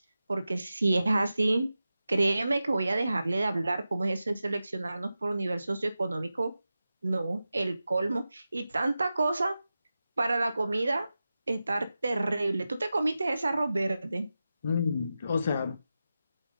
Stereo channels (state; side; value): inverted; both; correlation -0.92